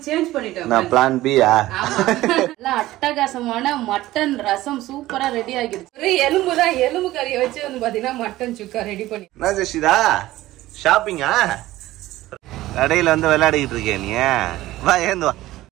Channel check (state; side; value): quieter; left; 16.4 dB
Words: சேஞ்ச் பண்ணிட்டோம். நான் பிளான் பியா? ஆமா. நல்லா அட்டகாசமான மட்டன் ரசம் சூப்பரா ரெடி ஆகிடுச்சு. ஒரு எலும்புதான், எலும்பு கறியை வச்சு வந்து பாத்தீங்கன்னா மட்டன் சுக்கா ரெடி பண்ணி. என்ன ஜெஷிதா ஷாப்பிங்கா? கடையில வந்து விளையாடிக்கிட்டு இருக்கேன் நீ. வா ஏந்து வா.